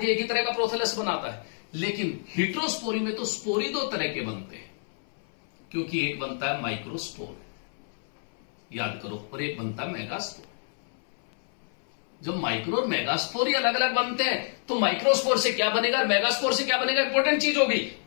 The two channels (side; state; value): right; silent; 60 dB below the other